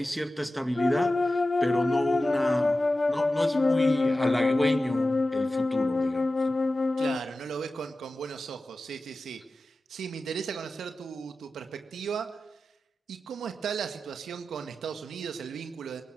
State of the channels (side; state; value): both; normal; correlation 0.94